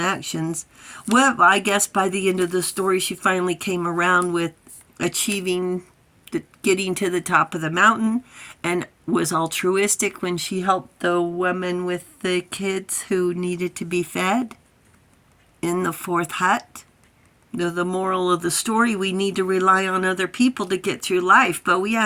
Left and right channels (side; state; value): both; identical; correlation 1.00